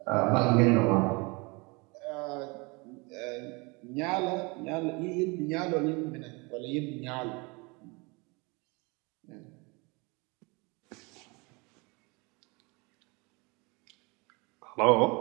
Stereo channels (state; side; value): quieter; left; 28.0 dB